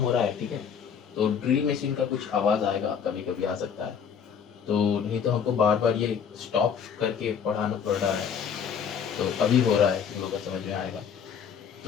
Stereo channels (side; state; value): right; quieter; 7.2 dB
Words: रहा है, ठीक है, तो ड्रिल मशीन का कुछ आवाज आएगा, कभी कभी आ सकता है, तो नहीं तो हमको बार बार ये स्टॉप करके पढ़ाना पड़ रहा है। तो अभी हो रहा है, तुम लोगों को समझ में आएगा,